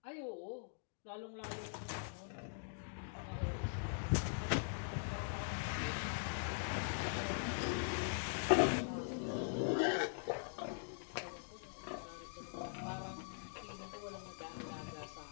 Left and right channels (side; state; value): right; silent; digital silence